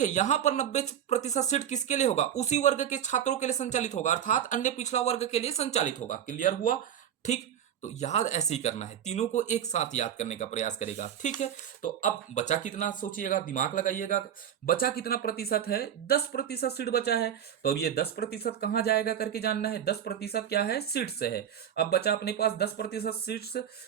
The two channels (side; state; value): left; quieter; 9.5 dB